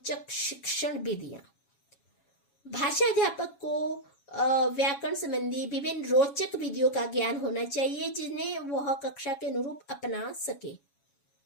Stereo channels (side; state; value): right; late; 7.2 ms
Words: शिक्षण विधियां। भाषा अध्यापक को व्याकरण संबंधी विभिन्न रोचक विधियों का ज्ञान होना चाहिए जिन्हें वह कक्षा के अनुरूप अपना सके।